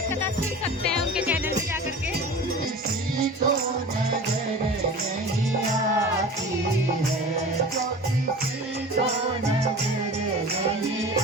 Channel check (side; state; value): both; normal; correlation 0.37